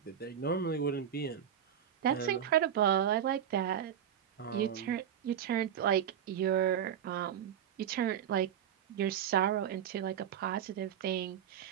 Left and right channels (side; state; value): left; quieter; 9.4 dB